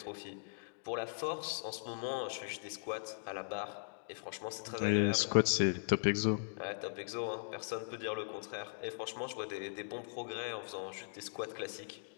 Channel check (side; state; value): right; silent; digital silence